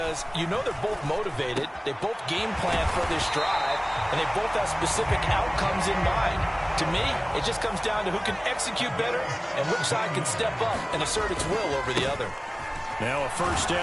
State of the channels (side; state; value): both; identical; correlation 1.00